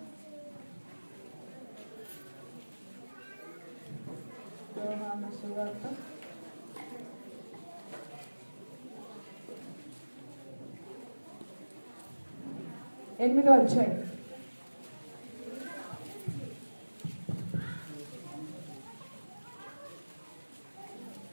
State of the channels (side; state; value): both; inverted; correlation -1.00